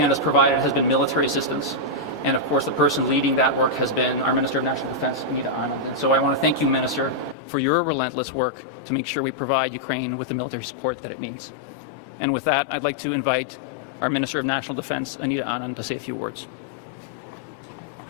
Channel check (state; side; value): drops out; right; at 7.4 s